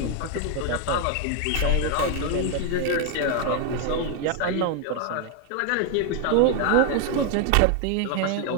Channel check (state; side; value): different; both; correlation 0.00